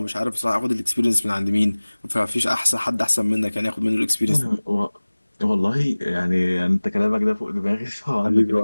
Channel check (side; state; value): both; inverted; correlation -1.00